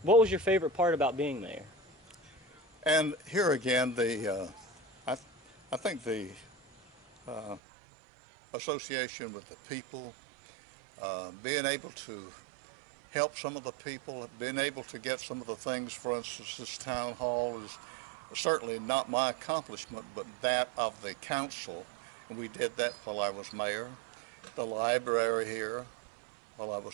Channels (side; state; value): left; drops out; at 7.6 s